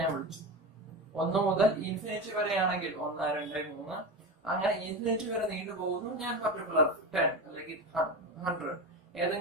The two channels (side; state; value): both; normal; correlation 0.22